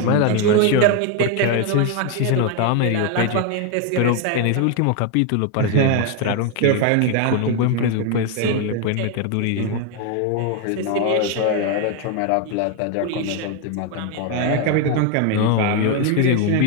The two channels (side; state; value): both; different; correlation 0.01